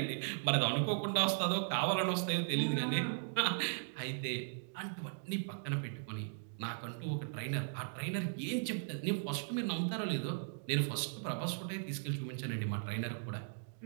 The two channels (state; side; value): silent; left; digital silence